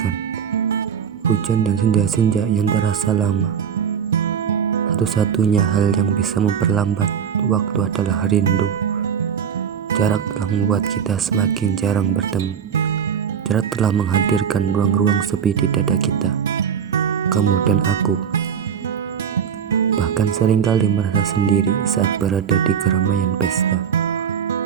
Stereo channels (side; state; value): left; quieter; 7.7 dB